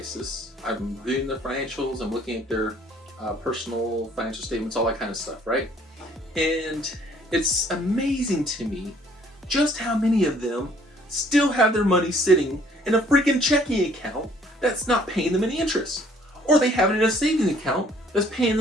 I'm reviewing their financials, I'm looking at their personal financial statements, all that kind of stuff, right? And it's amazing to me just how many of them still have their money sitting in a freaking checking account that's not paying them any interest. Or they have it in a savings account that's paying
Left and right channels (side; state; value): both; normal; correlation 0.59